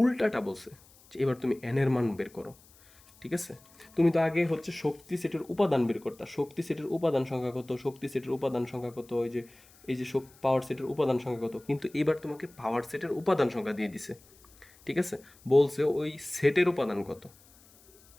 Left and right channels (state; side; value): noise; left; hiss, 27 dB below the sound